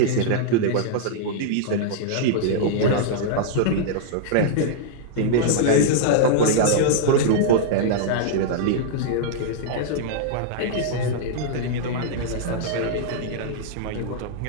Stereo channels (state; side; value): different; both; correlation -0.01